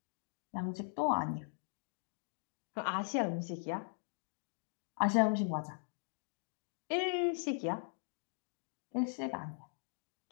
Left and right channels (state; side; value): silent; right; digital silence